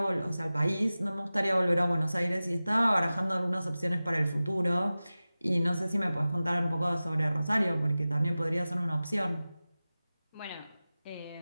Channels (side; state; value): both; inverted; correlation -0.97